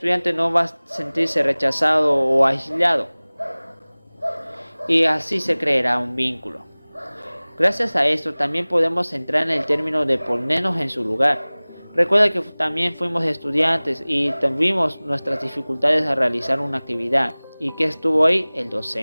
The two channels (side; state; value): both; inverted; correlation -1.00